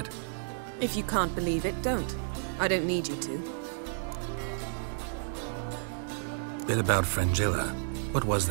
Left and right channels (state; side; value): silent; left; digital silence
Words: If you can't believe it, don't. I don't need you to. Bit about Fringilla. What was